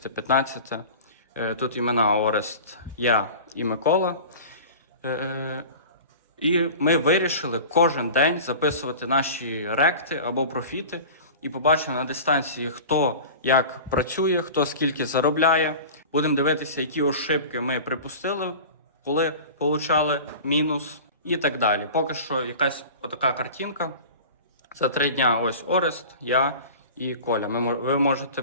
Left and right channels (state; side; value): inverted; both; correlation -0.37